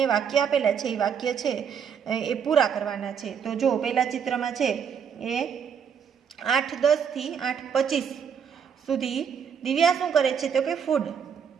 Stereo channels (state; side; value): quieter; left; 7.3 dB